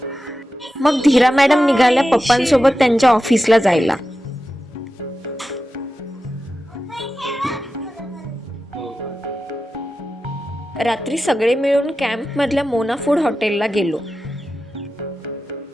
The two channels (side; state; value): both; normal; correlation 0.92